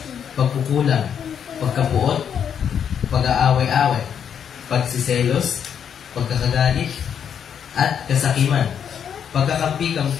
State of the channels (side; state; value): right; quieter; 8.1 dB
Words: pagkukulang, pagkapuot, pag-aaway-away, pagsiselos, pagkakagalit, at kasakiman,